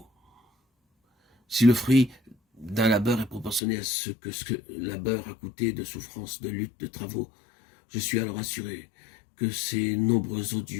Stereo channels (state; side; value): drops out; right; at 3.6 s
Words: Si le fruit d'un labeur est proportionné à ce que labeur a coûté de souffrance, de lutte, de travaux, je suis alors assuré que ces nombreux